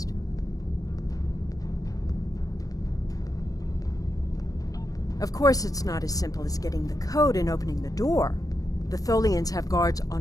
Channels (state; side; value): late; right; 0.17 ms